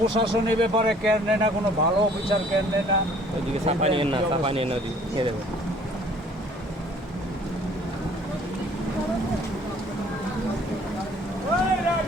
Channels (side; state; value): both; normal; correlation 0.55